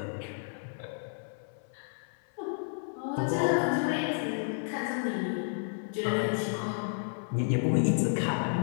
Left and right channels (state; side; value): silent; right; 57 dB below the other